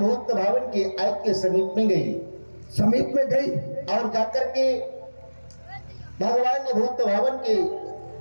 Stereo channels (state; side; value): inverted; both; correlation -1.00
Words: भावन के आयत के समीप में गई समीप में गई और जाकर के भगवान ने भूत भावन के